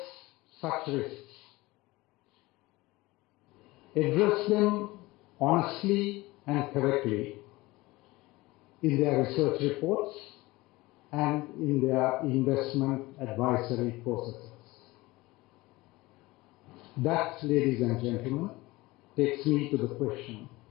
such risks. Address them honestly and correctly in their research reports and in their investment advisory processes. That, ladies and gentlemen, takes me to the question,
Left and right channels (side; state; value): right; quieter; 20.6 dB